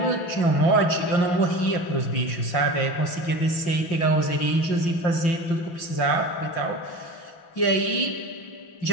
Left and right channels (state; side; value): late; right; 5.6 ms